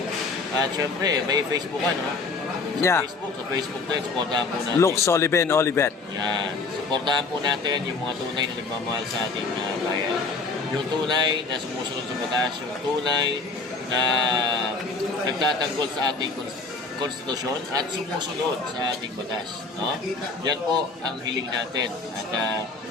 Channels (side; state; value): right; quieter; 3.9 dB